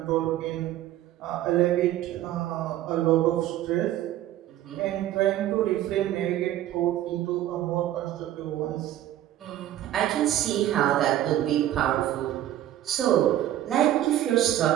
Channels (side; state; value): left; quieter; 12.9 dB